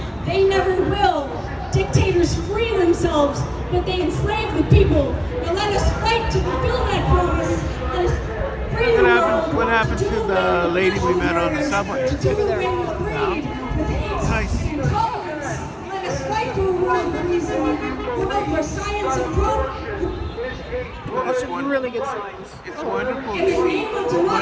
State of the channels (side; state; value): both; identical; correlation 1.00